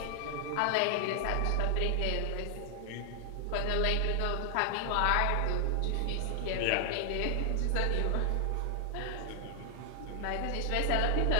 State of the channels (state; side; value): different; both; correlation 0.00